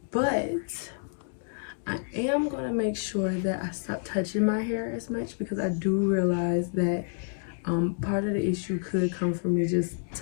But I am going to make sure that I stop touching my hair as much, because I do realize that part of the issue could come from me just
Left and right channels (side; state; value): right; silent; 59 dB below the other